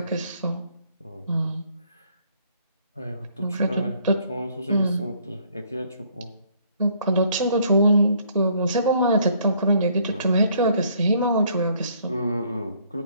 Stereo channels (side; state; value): both; inverted; correlation -0.63